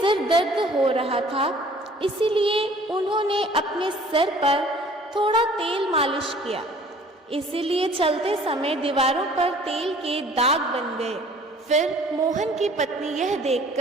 दर्द हो रहा था, इसीलिए उन्होंने अपने सिर पर थोड़ा तेल मालिश किया। इसीलिए चलते समय दीवारों पर तेल के दाग बन गए। फिर मोहन की पत्नी यह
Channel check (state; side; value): normal; both; correlation 0.52